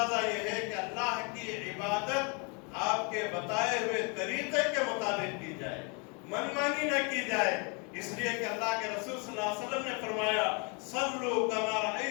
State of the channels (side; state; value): right; quieter; 33.8 dB